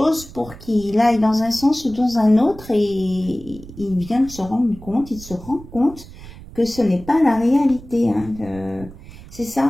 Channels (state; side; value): noise; right; rumble, 17 dB below the sound